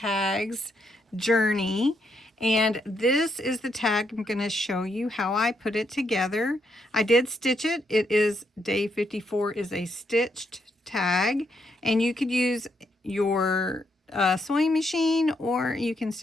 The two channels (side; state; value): both; normal; correlation 0.77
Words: journey. And this is the tag I'm going to show you how I put it together. I did stitch it. It is day 54 is a stitched tag, and you could use your sewing machine, or you can